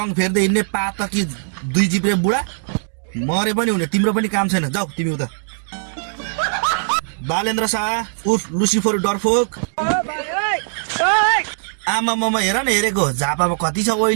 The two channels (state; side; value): silent; left; digital silence